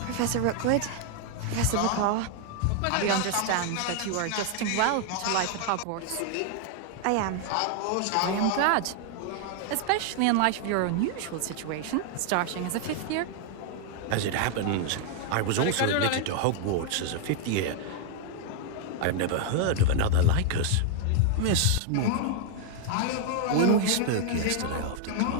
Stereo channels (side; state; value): both; different; correlation 0.00